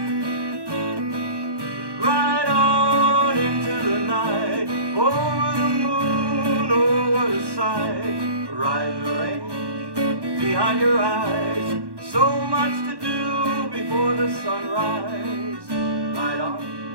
Ride on into the night, over the moon, oh what a sight. Ride the range behind your eyes, so much to do before the sunrise. Ride on,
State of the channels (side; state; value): left; late; 1.1 ms